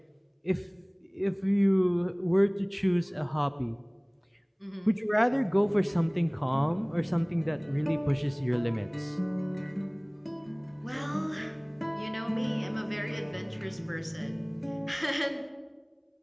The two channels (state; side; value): identical; both; correlation 1.00